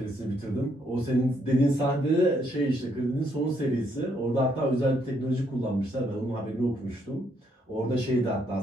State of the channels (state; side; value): normal; both; correlation 0.73